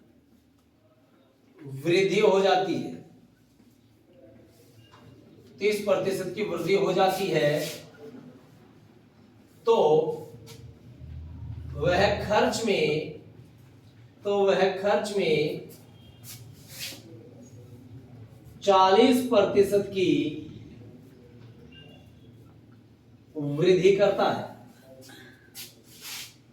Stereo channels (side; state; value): both; identical; correlation 1.00